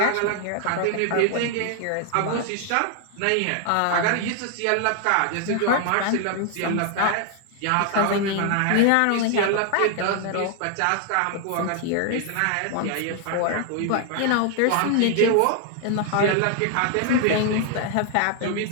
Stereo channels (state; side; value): different; both; correlation 0.00